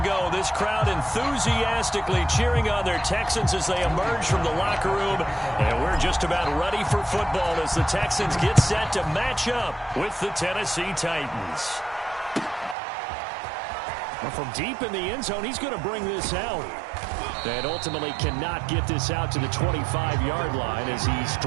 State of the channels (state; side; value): drops out; left; at 12.8 s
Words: this crowd enthusiastically cheering on their Texans as they emerge from the locker room. And we're just about ready for football as the Texans get set to match up with the Tennessee Titans. From deep in the end zone, he's going to bring this out. And ultimately cannot get this out to the 25-yard line as he's